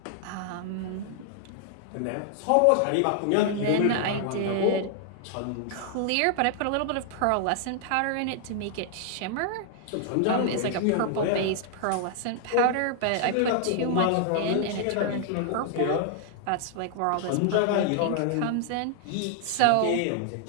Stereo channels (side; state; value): both; different; correlation 0.00